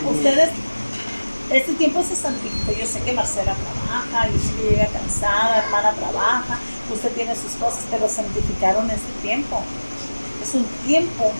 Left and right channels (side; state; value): both; inverted; correlation -1.00